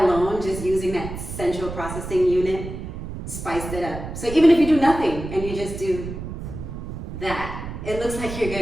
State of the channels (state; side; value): noise; right; rumble, 8 dB below the sound